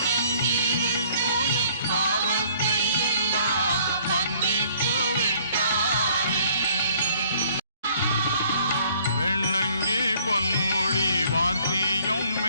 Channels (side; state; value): both; inverted; correlation -0.59